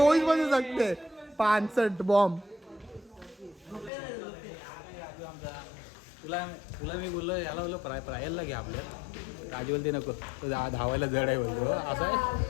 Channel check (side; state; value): right; drops out; at 3.9 s